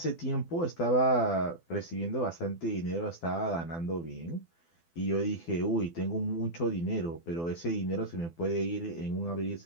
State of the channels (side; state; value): right; late; 12 ms